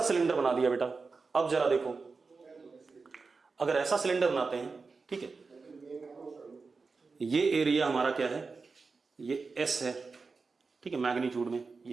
सिलेंडर बना दिया बेटा। अब जरा देखो, अगर ऐसा सिलेंडर बनाते हैं, ठीक है, ये एरिया हमारा क्या है, ये एस है, ठीक है, मैग्नीट्यूड में,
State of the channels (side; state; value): left; quieter; 4.4 dB